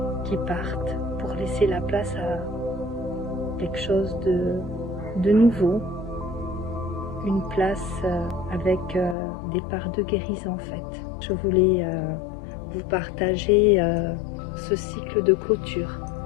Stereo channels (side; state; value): right; drops out; at 9.2 s